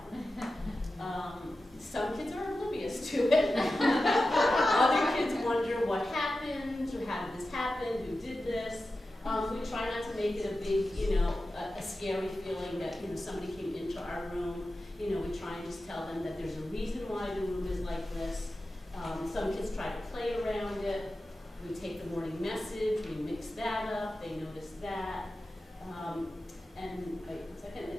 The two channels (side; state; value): both; normal; correlation 0.93